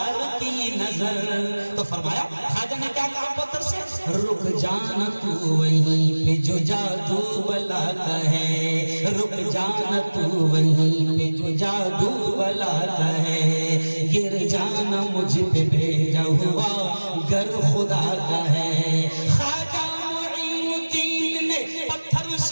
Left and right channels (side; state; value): both; inverted; correlation -1.00